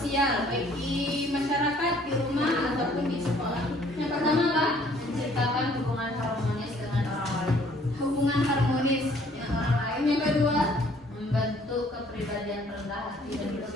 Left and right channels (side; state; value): both; normal; correlation 0.60